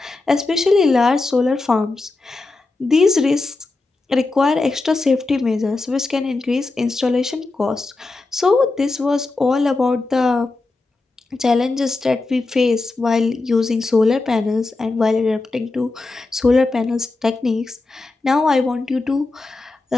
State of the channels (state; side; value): quieter; right; 3.4 dB